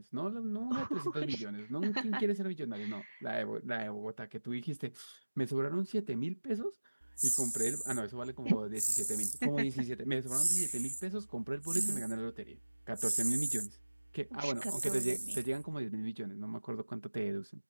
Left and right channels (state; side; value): inverted; both; correlation -1.00